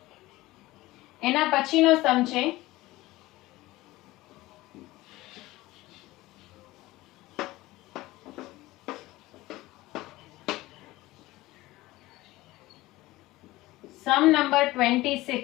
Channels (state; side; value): quieter; right; 18.4 dB